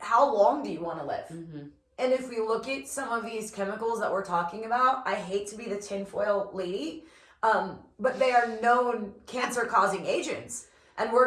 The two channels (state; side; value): identical; both; correlation 1.00